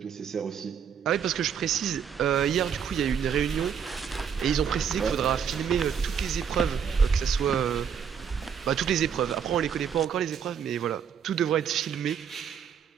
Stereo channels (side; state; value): left; quieter; 7.5 dB